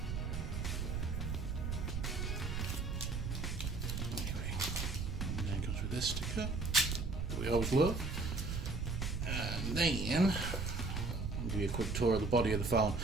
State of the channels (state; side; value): noise; right; rumble, 2 dB below the sound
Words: And then it comes with this sticker that we always love. And then I'll give you a quick tour of the body of the phone.